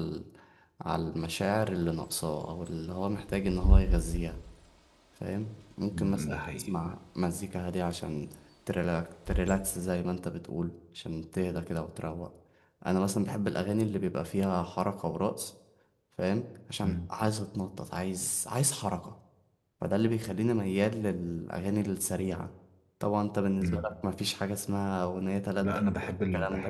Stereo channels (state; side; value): identical; both; correlation 1.00